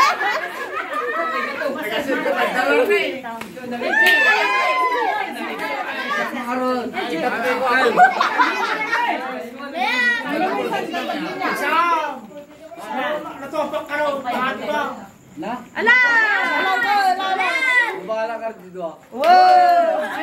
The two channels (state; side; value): identical; both; correlation 1.00